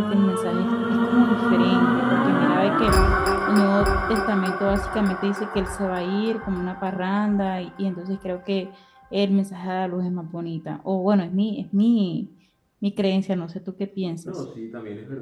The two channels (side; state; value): both; identical; correlation 1.00